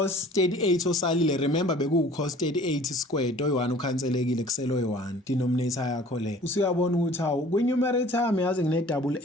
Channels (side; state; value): both; normal; correlation 0.49